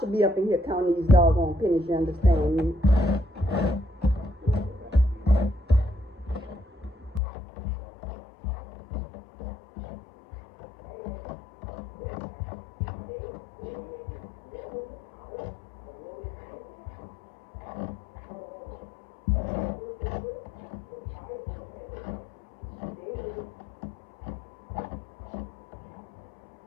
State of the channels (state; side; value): drops out; right; at 7.2 s